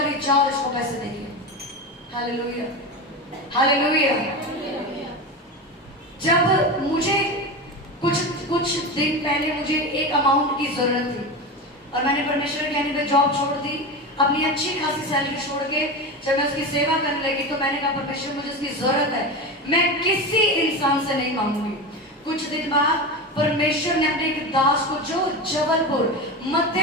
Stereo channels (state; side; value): normal; both; correlation 0.22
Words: जाओ इसको पैसे देंगे। Hallelujah, hallelujah. जब मुझे कुछ दिन पहले मुझे एक अमाउंट की जरूरत थी और मैंने परमेश्वर के कहने पे जॉब छोड़ दी, अपनी अच्छी खासी सैलरी छोड़ के जब मैं उसकी सेवा करने लगी तो मैंने कहा, परमेश्वर मुझे उसकी जरूरत है, मैं किसी इंसान से नहीं मांगूंगी। कुछ दिन बाद परमेश्वर ने अपने एक दास को, जो जबलपुर